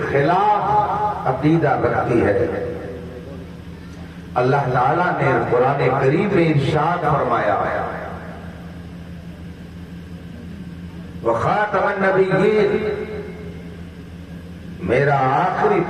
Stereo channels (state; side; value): identical; both; correlation 1.00